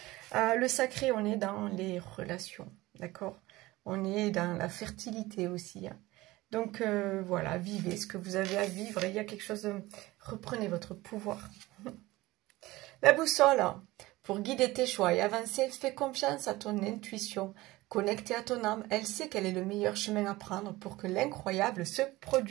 Le sacré, on est dans les relations, d'accord? On est dans la fertilité aussi. Hein. Donc, voilà, vivez ce que vous avez à vivre. Il y a quelque chose de... Reprenez votre pouvoir. La boussole, pour guider tes choix et avancer, fais confiance à ton intuition. Connectée à ton âme, elle sait quel est le meilleur chemin à prendre pour que l'incroyable se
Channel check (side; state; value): left; quieter; 19.2 dB